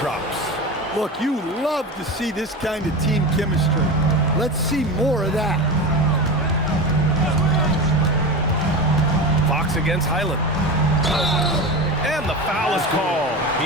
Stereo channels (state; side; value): normal; both; correlation 0.25